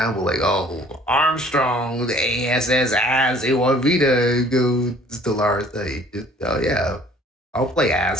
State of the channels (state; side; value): normal; both; correlation 0.54